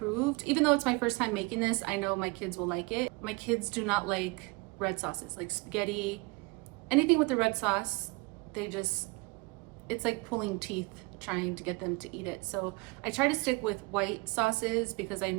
Even though it's my first time making this, I know my kids will like it. My kids do not like red sauces, like spaghetti, anything with the red sauce. It's like pulling teeth trying to get them to eat it. So I try to stick with white sauces because I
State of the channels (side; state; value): left; quieter; 26.3 dB